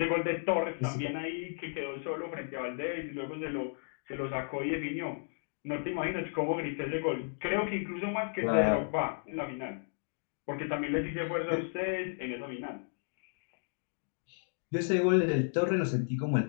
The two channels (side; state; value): right; silent; digital silence